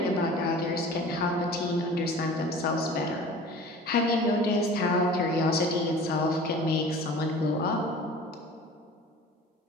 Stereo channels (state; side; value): normal; both; correlation 0.42